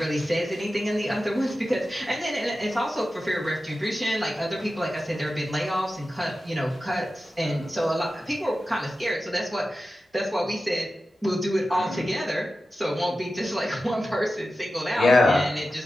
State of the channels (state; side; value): normal; both; correlation 0.93